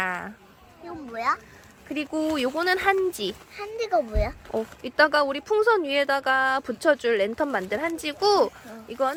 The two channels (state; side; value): identical; both; correlation 1.00